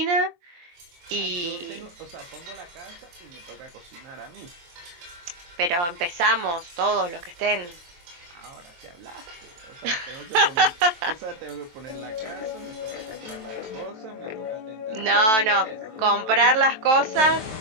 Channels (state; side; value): late; left; 23 ms